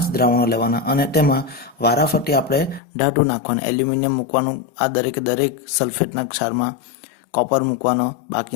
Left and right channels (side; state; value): right; drops out; at 2.8 s